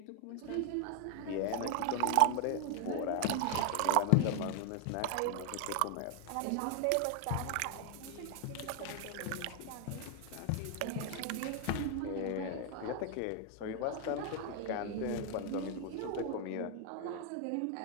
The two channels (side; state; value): both; different; correlation 0.00